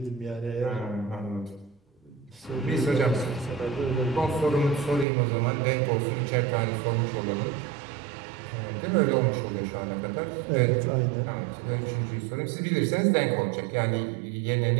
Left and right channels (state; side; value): drops out; left; at 5.1 s